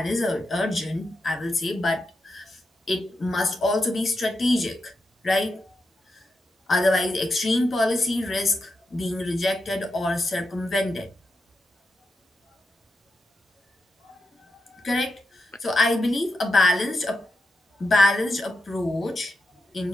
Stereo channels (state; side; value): normal; both; correlation 0.87